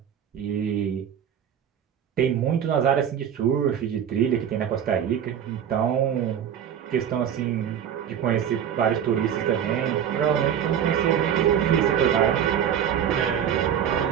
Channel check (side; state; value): left; quieter; 9.0 dB